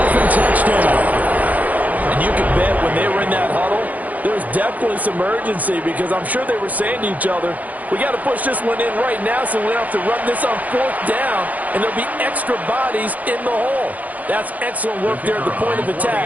touchdown. And you can bet when they were in that huddle, there's definitely some urgency because I'm sure they were saying to each other, we got to push this one in right now so we don't have to run this on 4th down, and there'll be extra bodies in the hole. That's excellent work there at the point of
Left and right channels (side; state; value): left; late; 0.077 ms